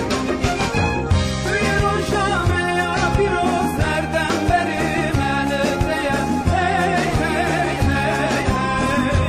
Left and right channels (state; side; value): identical; both; correlation 1.00